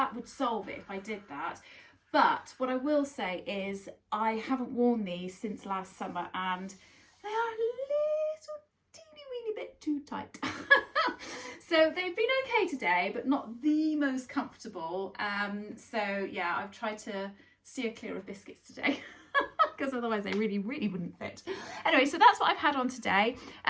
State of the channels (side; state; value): both; identical; correlation 1.00